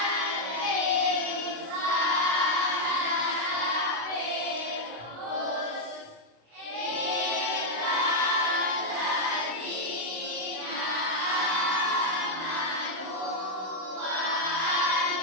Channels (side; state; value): left; late; 26 ms